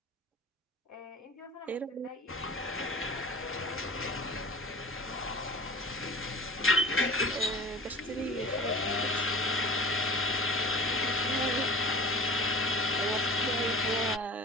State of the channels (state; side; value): normal; both; correlation 0.39